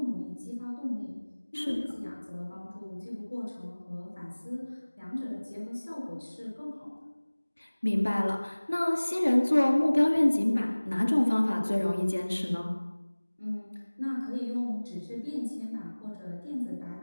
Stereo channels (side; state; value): both; inverted; correlation -1.00